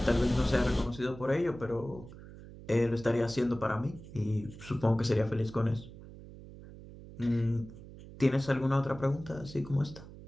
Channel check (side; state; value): right; noise; hum, 16 dB below the sound